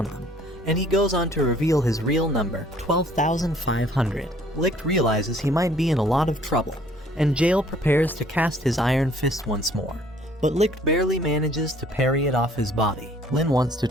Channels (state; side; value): normal; both; correlation 0.58